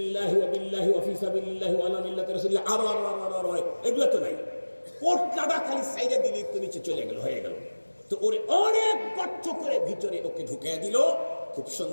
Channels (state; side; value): inverted; both; correlation -1.00